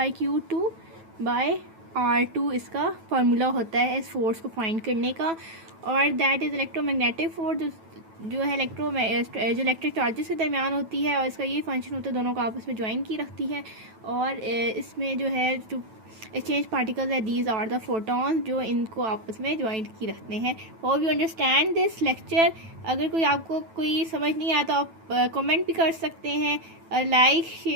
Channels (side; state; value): left; late; 9.1 ms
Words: इसका फार्मूला होता है इस फोर्स को फाइंड करने का। और दैट इज़ इलेक्ट्रोमैग्नेटिक फोर्स, जो है जो इलेक्ट्रिक चार्जेस के दरमियान होती है, और इसका ये फंक्शन होता है, दोनों को आपस में ज्वाइन की रखती है। और इसमें जो है जो एक्सचेंज पार्टिकल्स है, दीज आर द फोटॉन्स, जो इनको आपस में ज्वाइन की रखते हैं। Hope you understand this lecture. अगर कोई आपको कोई समझ नहीं आया तो आप कमेंट भी कर सकते हैं। Like,